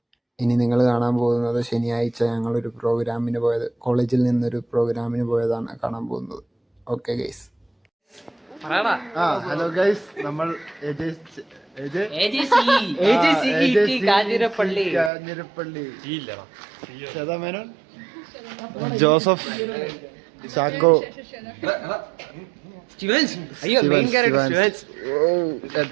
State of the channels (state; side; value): drops out; left; at 15.1 s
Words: ഇനി നിങ്ങൾ കാണാൻ പോകുന്നത് ശനിയാഴ്ച ഞങ്ങളൊരു പ്രോഗ്രാമിന് പോയത്, കോളേജിൽ നിന്നൊരു പ്രോഗ്രാമിന് പോയതാണ് കാണാൻ പോകുന്നത്. Okay guys. ഹലോ ഗൈസ്, നമ്മൾ കാഞ്ഞിരപ്പള്ളി ശ്വേതാമേനോൻ, ജോസഫ്, ചാക്കോ,